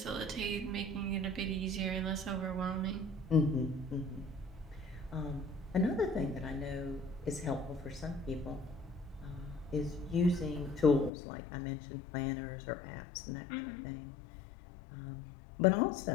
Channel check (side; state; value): right; drops out; at 11.1 s